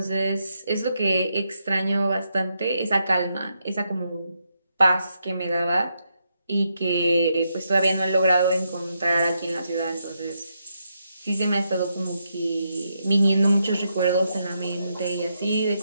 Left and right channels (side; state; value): both; inverted; correlation -0.81